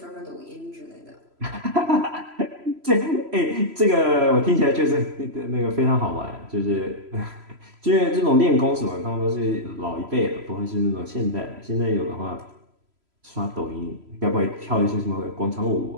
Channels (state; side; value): late; left; 3.0 ms